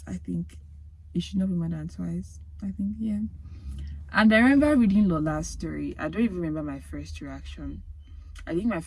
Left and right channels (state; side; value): identical; both; correlation 1.00